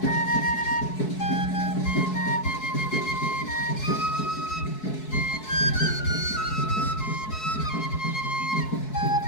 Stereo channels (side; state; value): right; late; 4.7 ms